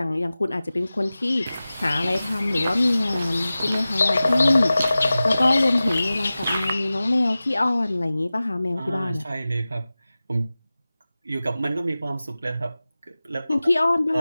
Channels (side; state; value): both; inverted; correlation -0.96